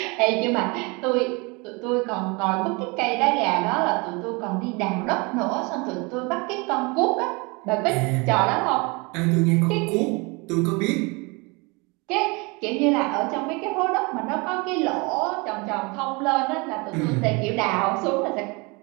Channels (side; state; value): left; quieter; 28.1 dB